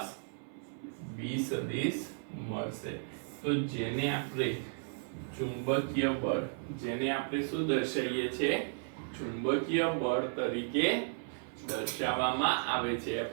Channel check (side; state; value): left; silent; 55 dB below the other